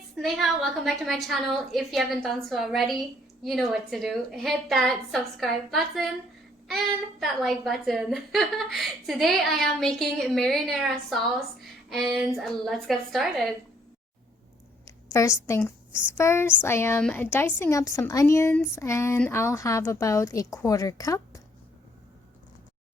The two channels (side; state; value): both; normal; correlation 0.65